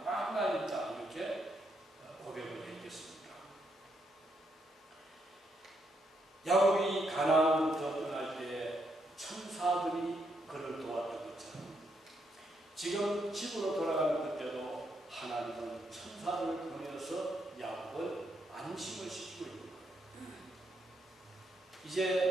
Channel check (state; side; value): normal; both; correlation 0.78